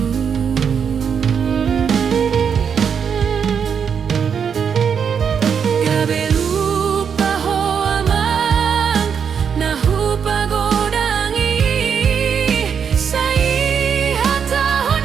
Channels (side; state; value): left; quieter; 7.1 dB